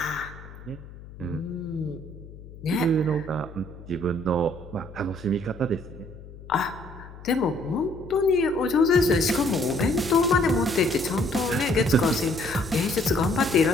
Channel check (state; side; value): noise; left; hum, 17 dB below the sound